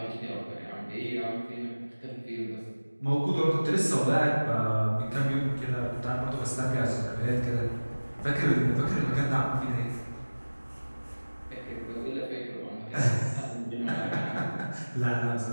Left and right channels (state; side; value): inverted; both; correlation -1.00